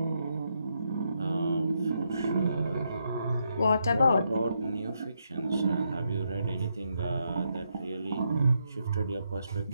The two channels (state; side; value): inverted; both; correlation -0.80